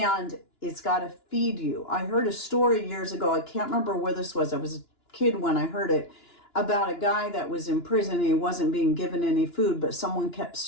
it's got to feed you. I heard a story years ago. I can't remember where this was. I was a kid when I heard it. About a guy that was in prison and he wasn't being given any food, but someone kept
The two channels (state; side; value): late; right; 2.9 ms